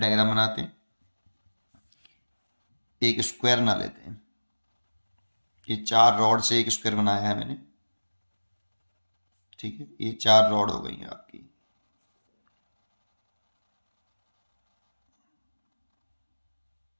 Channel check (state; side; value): inverted; both; correlation -1.00